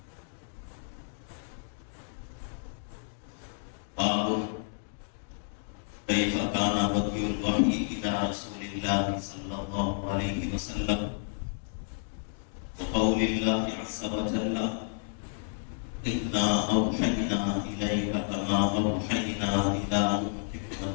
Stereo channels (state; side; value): silent; right; digital silence